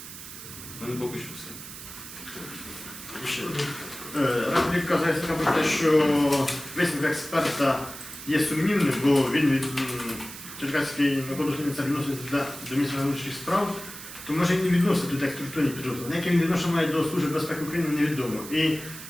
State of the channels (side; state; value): right; noise; hiss, 13 dB below the sound